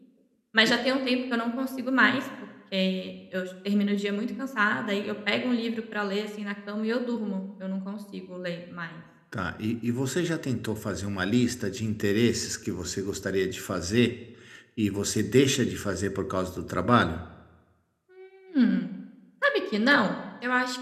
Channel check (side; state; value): both; identical; correlation 1.00